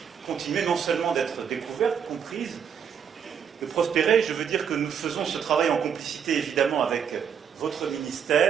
continuer non seulement d'être découvertes, comprises, de prospérer. Je veux dire que nous faisons ce travail en complicité évidemment avec votre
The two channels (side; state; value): left; quieter; 7.6 dB